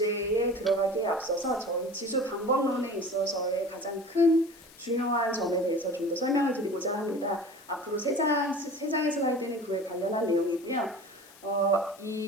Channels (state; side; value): noise; left; hiss, 23 dB below the sound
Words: 들어가기에 앞서서 저희 지수 방법론에 있어서의 가장 큰 중요한 점에 대해서 좀 더 설명을 드리고자 합니다. 앞으로 3장의 슬라이드는 그에 관련한 내용이고요.